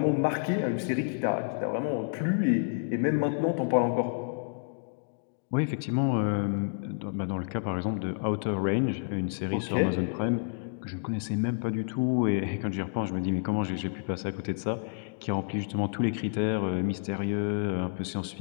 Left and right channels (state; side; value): silent; right; digital silence